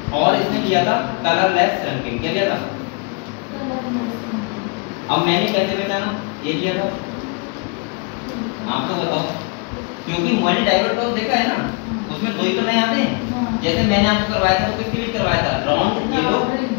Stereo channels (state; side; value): quieter; right; 32.7 dB